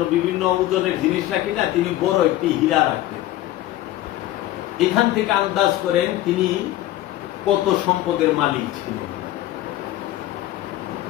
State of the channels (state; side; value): quieter; right; 14.7 dB